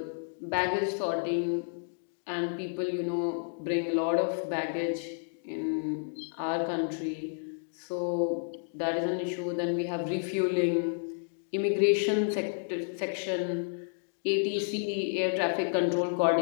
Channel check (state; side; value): silent; right; digital silence